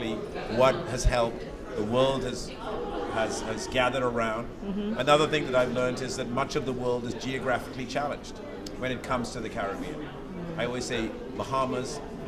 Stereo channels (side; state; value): both; identical; correlation 1.00